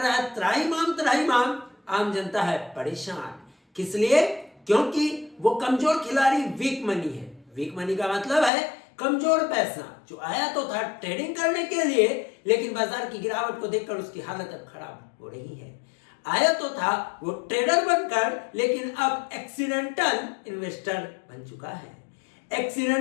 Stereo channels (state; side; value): drops out; right; at 8.5 s